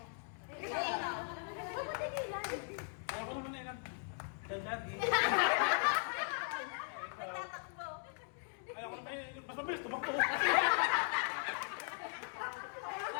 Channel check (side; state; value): right; silent; 52 dB below the other